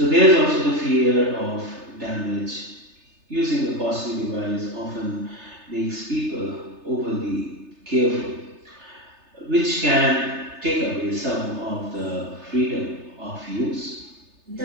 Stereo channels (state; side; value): late; left; 3.3 ms